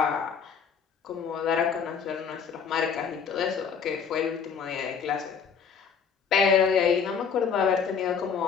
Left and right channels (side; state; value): right; quieter; 6.5 dB